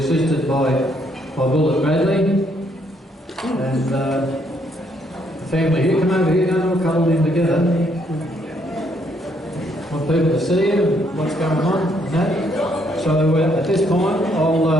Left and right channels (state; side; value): normal; both; correlation 0.71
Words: by Bullet Bradley, and the family here. Come over here, don't all cuddle in together. Want people to see you and what's going on and that. So at this point,